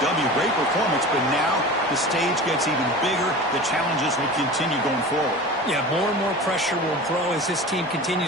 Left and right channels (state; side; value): normal; both; correlation 0.34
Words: W. Great performance, but now the stage gets even bigger. The challenges will continue going forward. Yeah, more and more pressure will grow as this team